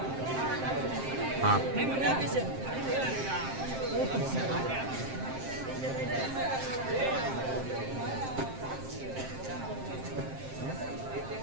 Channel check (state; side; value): late; left; 7.6 ms